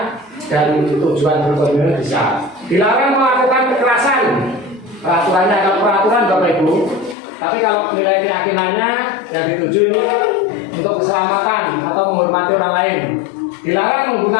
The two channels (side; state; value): right; drops out; at 7.2 s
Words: dan tujuan berkomitmen bisa. Dilarang melakukan kekerasan. Peraturannya ada peraturan Bapak Ibu. Tapi kalau nilai keyakinannya yang dituju ini untuk keselamatan atau menghormati orang lain. Dilarang